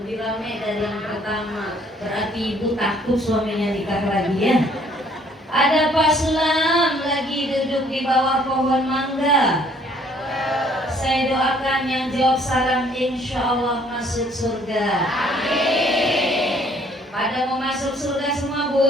ramai dari yang pertama, berarti ibu takut suaminya nikah lagi, ya. Ada Pak Sulam lagi duduk di bawah pohon mangga. Saya doakan yang jawab salam insya Allah masuk surga. Amin. Pada mau masuk surga semua,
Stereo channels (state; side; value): normal; both; correlation 0.61